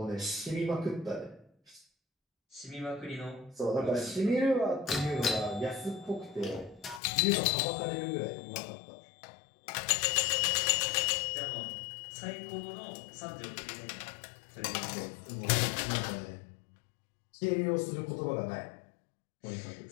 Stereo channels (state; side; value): drops out; right; at 7.0 s